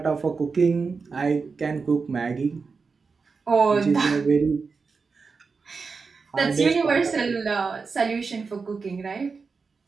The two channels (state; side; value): quieter; left; 4.8 dB